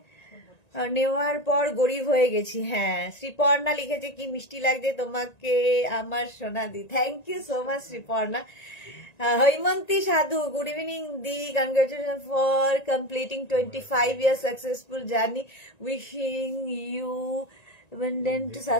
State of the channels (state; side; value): late; right; 1.9 ms